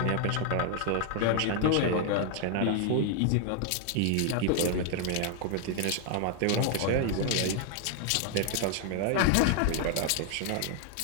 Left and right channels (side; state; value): both; different; correlation 0.00